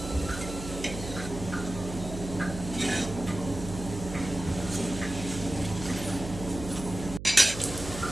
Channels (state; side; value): noise; right; hum, 9 dB below the sound